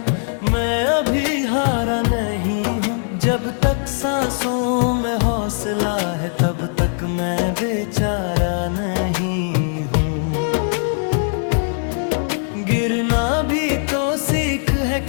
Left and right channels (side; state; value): right; silent; digital silence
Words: मैं अभी हारा नहीं हूँ। जब तक सांसों में हौसला है तब तक मैं बेचारा नहीं हूँ। गिरना भी तो सीख है